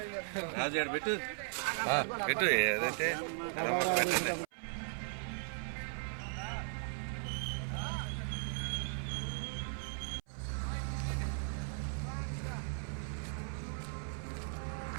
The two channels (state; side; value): silent; left; 53 dB below the other